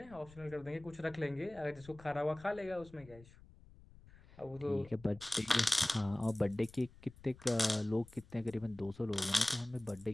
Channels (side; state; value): left; noise; rumble, 22 dB below the sound